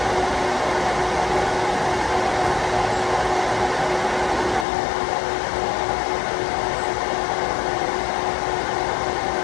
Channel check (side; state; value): right; drops out; at 4.7 s